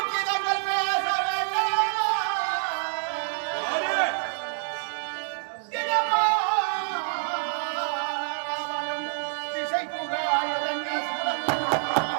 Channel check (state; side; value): silent; left; digital silence